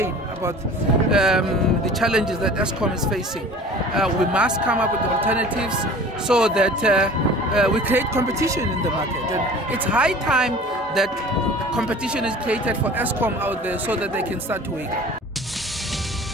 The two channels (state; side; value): normal; both; correlation 0.43